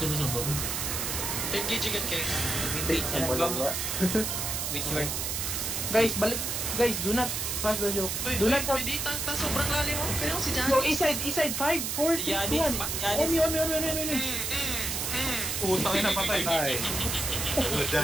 sila sa baba. Engage agad kayo. Which one? Guys, balik. Guys, do not pass the joke. Do not help. Pwede sobrang lalim mo. Kaya si Yo, Janice. east side, 5, 4, 3, 2, 1. Omi. Putang ina, patay.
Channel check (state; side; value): noise; right; hiss, 2 dB below the sound